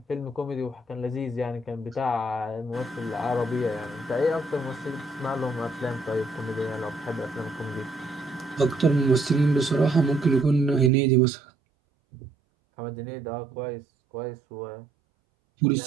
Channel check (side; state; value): left; drops out; at 10.9 s